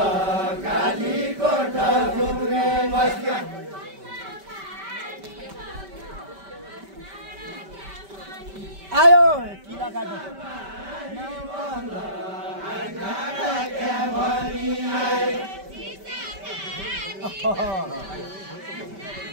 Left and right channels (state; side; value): late; left; 5.2 ms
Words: काली कोठ घुम्ने बस्या आयो किला काट्नु